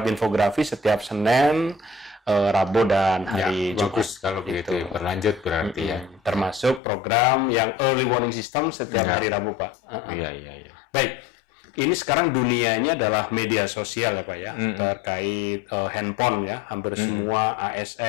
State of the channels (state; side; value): drops out; right; at 6.8 s